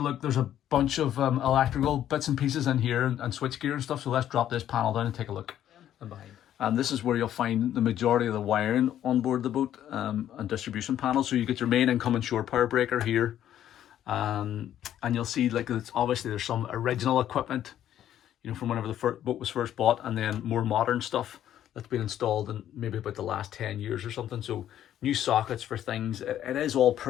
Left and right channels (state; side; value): quieter; right; 11.2 dB